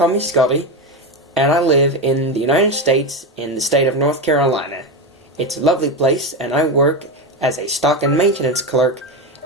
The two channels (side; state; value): both; normal; correlation 0.16